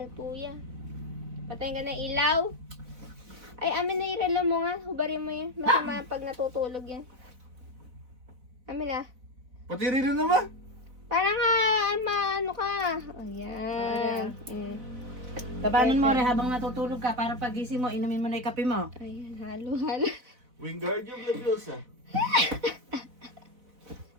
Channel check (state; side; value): late; left; 4.0 ms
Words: kuya. Patayin ka na ilaw. Ay, amin na irelo mo nga. Hubarin mo yan. Masama pag natutulog yan. Amin na. Pati rin naman. Parang nga, ano ka. Ayan. Tabanan mo rin habang natutulog ka para pagising mo, inumin mo na yung kape mo. Ayan, halo-halo. Wingardium Leviosa.